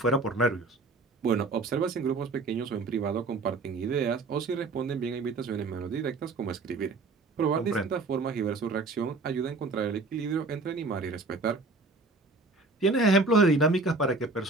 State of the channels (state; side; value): quieter; left; 3.5 dB